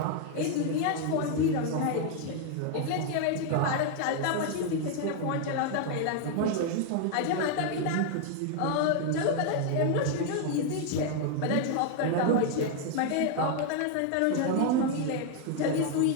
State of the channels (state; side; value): different; both; correlation 0.00